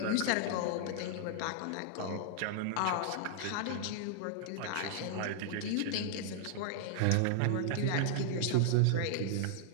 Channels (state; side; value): different; both; correlation -0.01